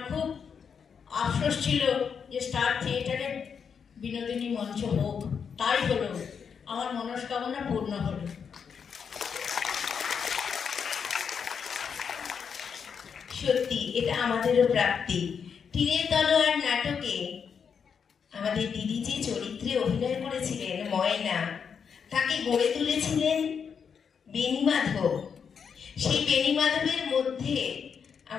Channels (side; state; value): right; quieter; 6.7 dB